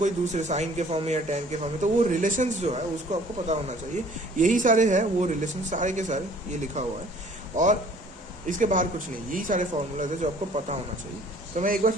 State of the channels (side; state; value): both; normal; correlation 0.54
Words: दूसरे साइन के फॉर्म में या टेन के फॉर्म में। तो वो रिलेशंस जो है उसको आपको पता होना चाहिए। यही सारे है वो रिलेशन, सारे के सारे ये लिखा हुआ है और इसके बाहर कुछ नहीं, यही सारे फॉर्मूलाज है जो आपको पता होना चाहिए। तो मैं एक बार